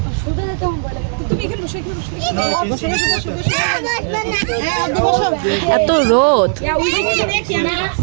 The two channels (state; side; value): silent; left; 59 dB below the other